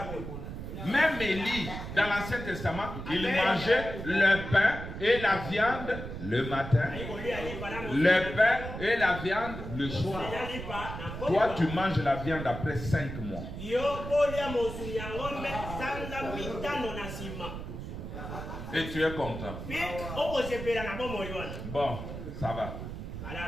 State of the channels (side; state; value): right; noise; rumble, 8 dB below the sound